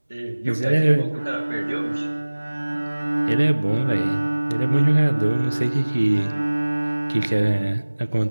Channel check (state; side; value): inverted; both; correlation -1.00